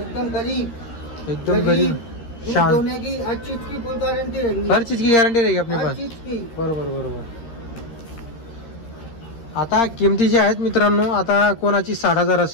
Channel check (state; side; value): late; right; 13 ms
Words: गरीब, एकदम गरीब दूध शांत, दोने की हर चीज की फुल गारंटी रहेगी, हर चीज की गॅरंटी रहेगी अपने हर पास। चीज की। बरोबर बरोबर। आता किमती जी आहेत मित्रांनो, आता कोणाची 60,000